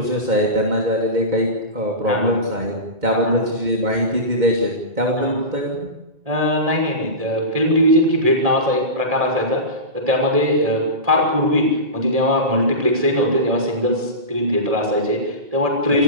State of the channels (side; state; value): left; late; 1.7 ms